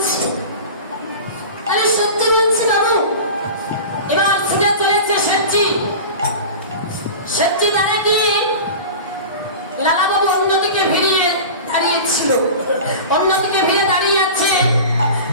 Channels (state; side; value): inverted; both; correlation -0.33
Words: আমি সত্যি বলছি বাবু। এবার ছুটে চলেছে শেঠজি। শেঠজি দাঁড়িয়ে গিয়ে লালা বাবু অন্যদিকে ভিড়িয়ে দাঁড়িয়েছিল, অন্যদিকে ভিড়ে দাঁড়িয়ে আছে।